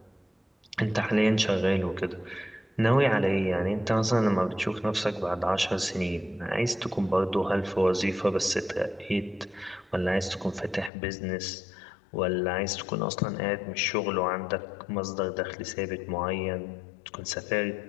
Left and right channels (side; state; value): right; drops out; at 10.9 s